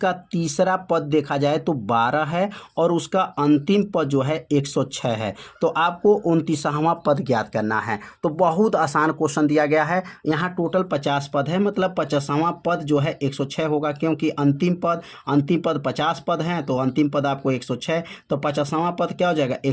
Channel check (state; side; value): identical; both; correlation 1.00